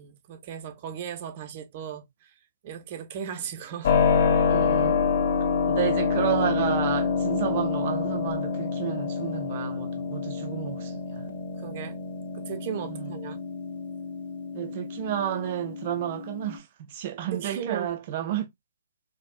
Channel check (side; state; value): both; inverted; correlation -0.47